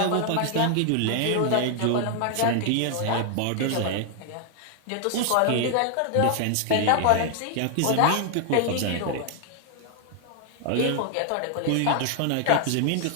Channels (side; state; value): both; different; correlation 0.00